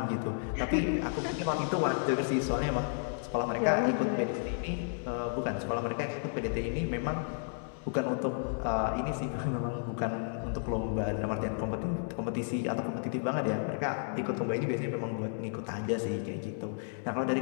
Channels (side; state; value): right; silent; digital silence